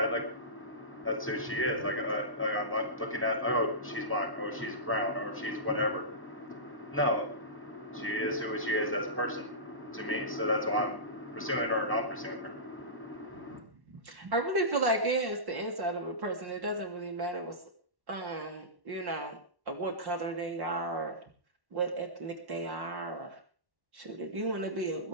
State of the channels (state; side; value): late; left; 1.1 ms